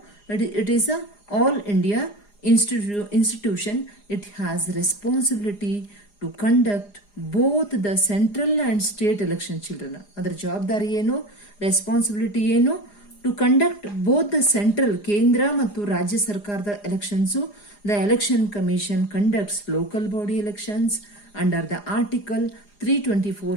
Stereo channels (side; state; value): right; late; 4.9 ms